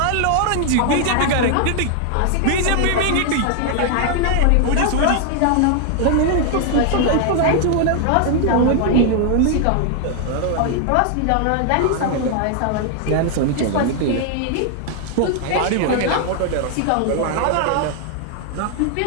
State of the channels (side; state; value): both; different; correlation 0.00